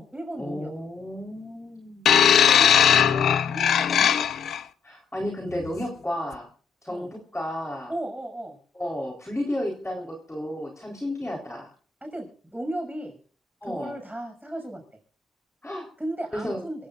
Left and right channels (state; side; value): quieter; right; 6.3 dB